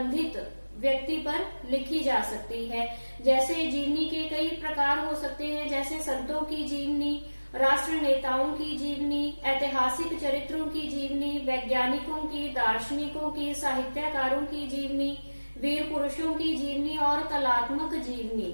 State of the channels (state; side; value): inverted; both; correlation -1.00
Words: व्यक्ति पर लिखी जा सकती है। जैसे जीवनी के कई प्रकार हो सकते हैं, जैसे संतों की जीवनी, राष्ट्र नेताओं की जीवनी, ऐतिहासिक चरित्रों की जीवनी, वैज्ञानिकों की, दार्शनिकों की, साहित्यकारों की जीवनी, वीर पुरुषों की जीवनी और कलात्मक जीवनी।